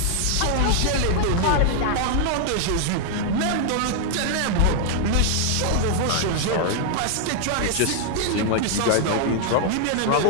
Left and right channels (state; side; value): different; both; correlation 0.00